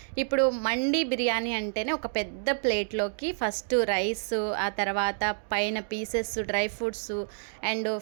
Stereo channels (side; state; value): left; silent; digital silence